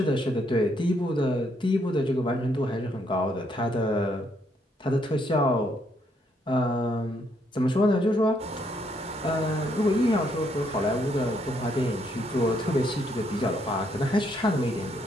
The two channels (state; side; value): normal; both; correlation 0.72